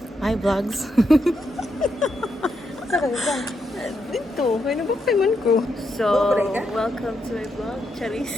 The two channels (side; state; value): both; normal; correlation 0.81